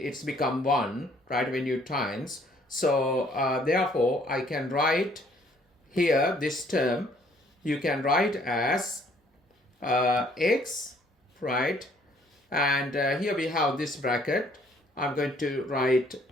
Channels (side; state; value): both; normal; correlation 0.62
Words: it's become 1, right? When you times. So therefore, I can write here this term. You can write as x, right? And here we have this bracket. I'm going to write